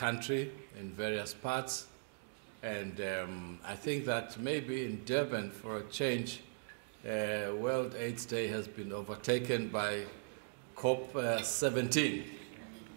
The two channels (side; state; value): left; silent; digital silence